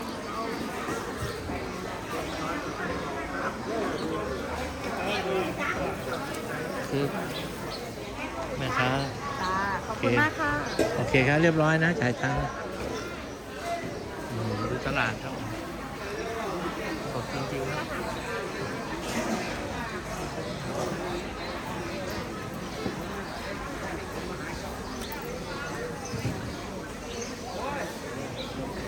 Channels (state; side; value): identical; both; correlation 1.00